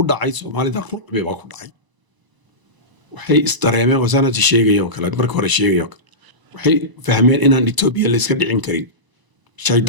dhacay soomaalida rucbi baa ku dhacay. waxay isdareemeen wasaanadii sheegaya oo kale marka hore sheegaya oo kale waxay fahmeen inaan Itoobiya la iska dhicin karin.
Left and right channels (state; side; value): late; left; 1.0 ms